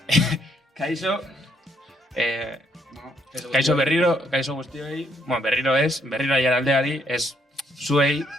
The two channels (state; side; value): normal; both; correlation 0.72